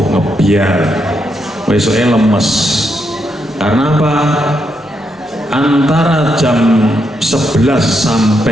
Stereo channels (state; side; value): normal; both; correlation 0.80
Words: ngebiar. Besoknya lemes. Karena apa? Antara jam 11